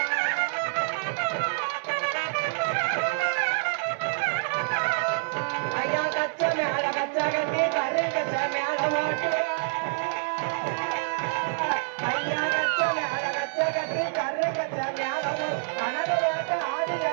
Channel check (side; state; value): left; silent; 60 dB below the other